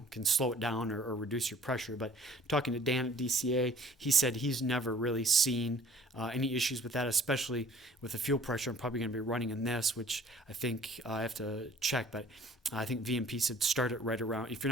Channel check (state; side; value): normal; both; correlation 0.52